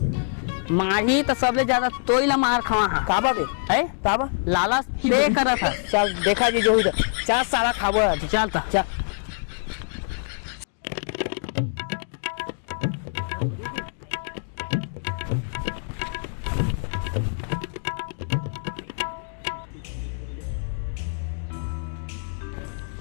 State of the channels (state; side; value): silent; right; digital silence